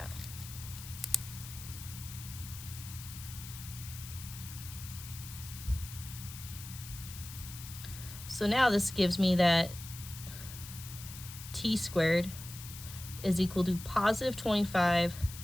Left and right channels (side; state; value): left; noise; hiss, 12 dB below the sound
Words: So now this gives me that t squared is equal to positive 25